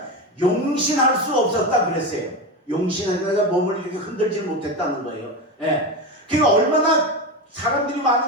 용신할 수 없었다 그랬어요. 용신하다가 몸을 이렇게 흔들지 못했다는 거예요. 예. 그러니까 얼마나 사람들이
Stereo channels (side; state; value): both; normal; correlation 0.19